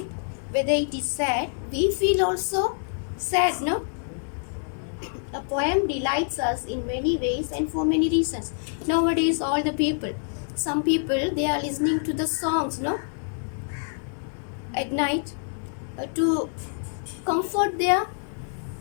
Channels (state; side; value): silent; right; digital silence